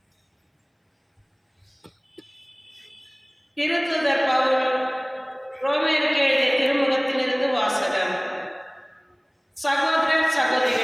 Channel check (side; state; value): both; identical; correlation 1.00